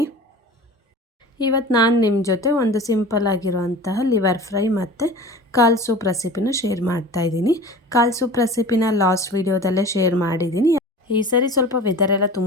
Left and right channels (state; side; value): normal; both; correlation 0.38